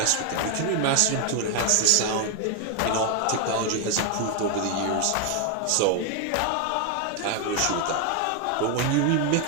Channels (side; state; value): both; different; correlation 0.01